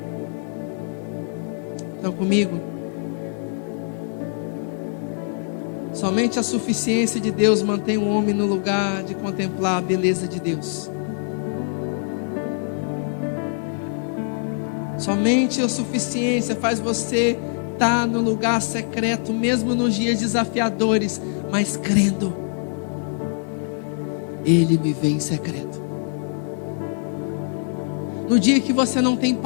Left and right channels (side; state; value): right; silent; digital silence